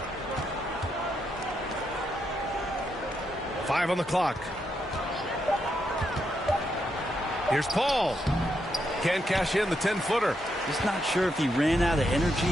5 on the clock. Here's Paul. Can't cash in the 10-footer. Just not sure if he ran out of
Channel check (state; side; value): normal; both; correlation 0.81